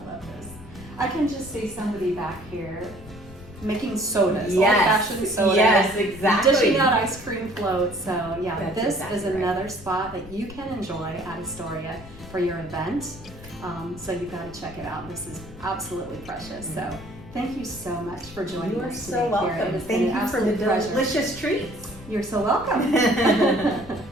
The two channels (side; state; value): left; noise; rumble, 17 dB below the sound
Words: love this. I can just see somebody back here making sodas, Yes, old-fashioned sodas. yes, exactly. Dishing out ice cream floats. So yeah, That's this exactly is right. another spot that you can enjoy at Estoria for your event. So you've got to check it out. This is absolutely precious. So thank you so much for joining You are us so today, welcome. Karen. It's been Thank an you for the absolute pleasure. delicious treats. You're so welcome.